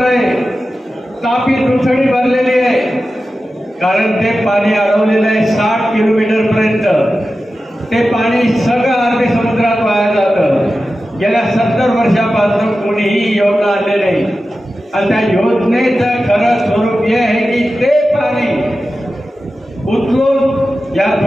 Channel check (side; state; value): both; normal; correlation 0.93